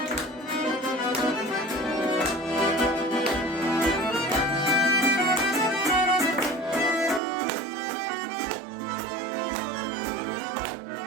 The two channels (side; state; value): left; drops out; at 7.2 s